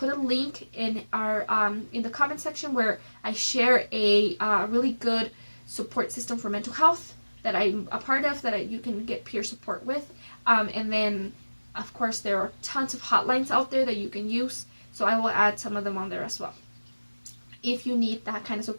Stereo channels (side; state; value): both; inverted; correlation -1.00